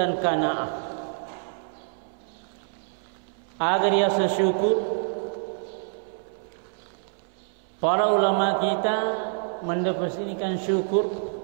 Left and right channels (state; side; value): silent; left; 60 dB below the other